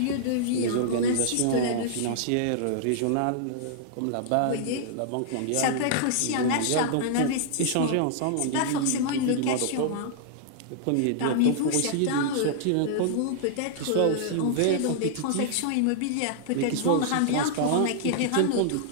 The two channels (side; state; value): both; different; correlation -0.01